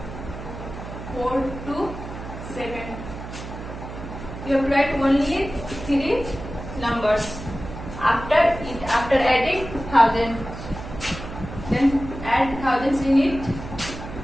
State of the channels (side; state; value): right; noise; hum, 10 dB below the sound